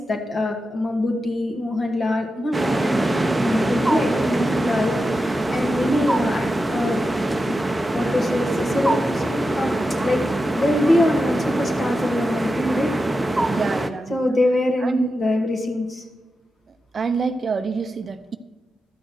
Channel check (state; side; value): normal; both; correlation 0.90